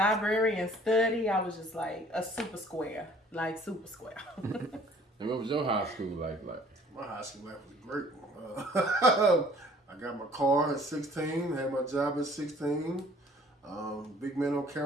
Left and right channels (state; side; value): normal; both; correlation 0.54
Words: and study. I was just like a super square, like super square. And what was your high school life like? My high school life was great. I got my car at 16, had my job at 16. Big man on